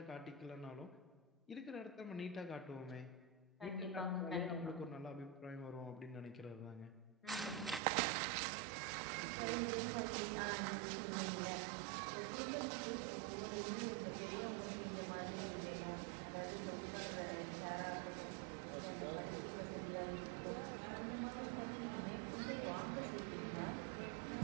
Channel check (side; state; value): left; drops out; at 7.8 s